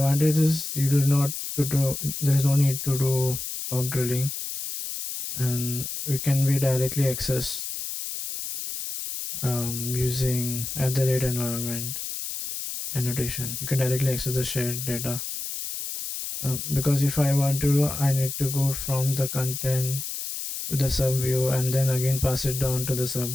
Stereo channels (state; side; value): noise; left; hiss, 6 dB below the sound